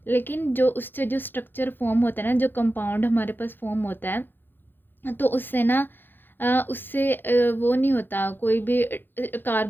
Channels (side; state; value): right; late; 0.096 ms